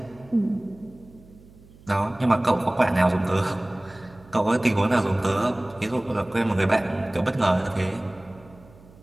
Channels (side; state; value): right; noise; hum, 24 dB below the sound